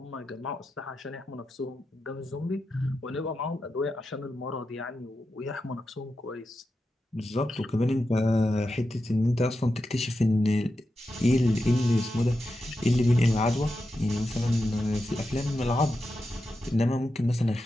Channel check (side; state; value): both; normal; correlation 0.89